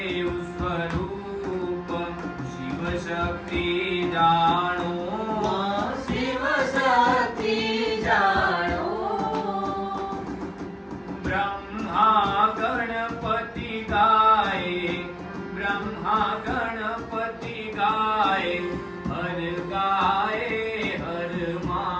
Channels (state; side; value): identical; both; correlation 1.00